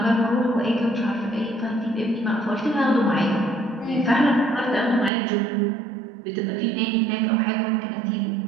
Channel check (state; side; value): drops out; left; at 5.1 s